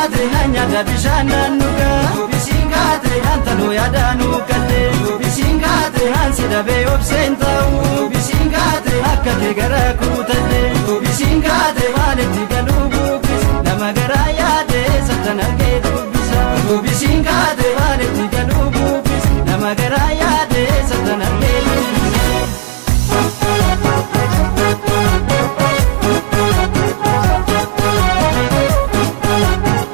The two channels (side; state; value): left; silent; digital silence